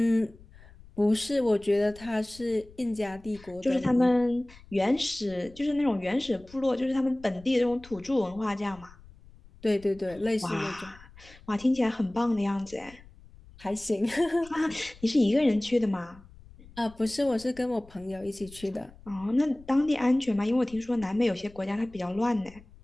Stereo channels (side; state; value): left; noise; rumble, 22 dB below the sound